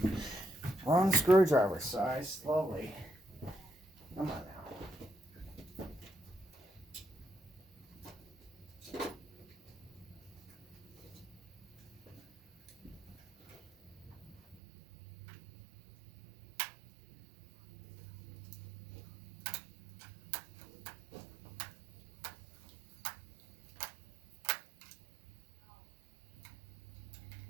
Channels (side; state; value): left; drops out; at 14.6 s